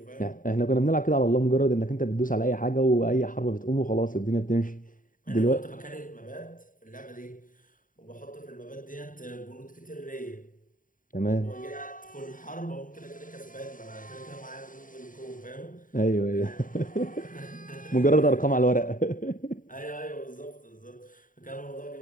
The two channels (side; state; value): right; late; 0.39 ms